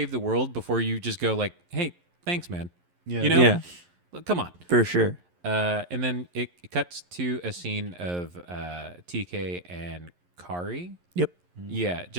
the world before you just go like, hey, thanks, man? Yeah. You know, Yeah, Look, come on. for sure. And then it cuts to a scene of TK and Kari. Yep. Yeah,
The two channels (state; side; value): late; left; 11 ms